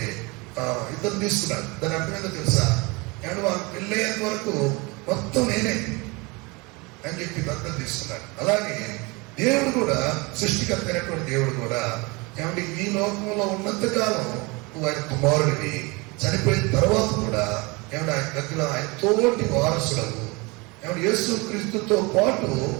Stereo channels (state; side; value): quieter; left; 26.6 dB